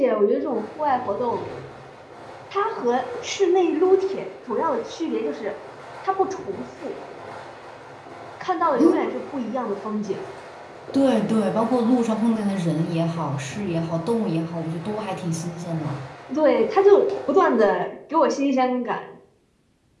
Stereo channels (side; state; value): both; identical; correlation 1.00